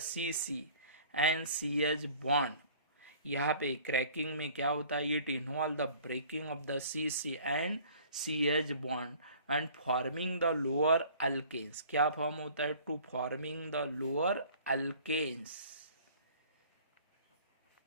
CC and CH bond. यहाँ पे क्रैकिंग में क्या होता है, it involve the breaking of the CC and CH bond and forming the lower alkanes. क्या form होता है, to forming the lower alkanes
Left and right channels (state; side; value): inverted; both; correlation -0.50